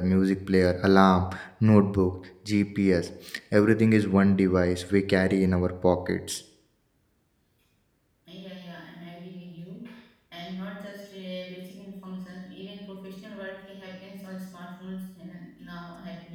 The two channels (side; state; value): both; identical; correlation 1.00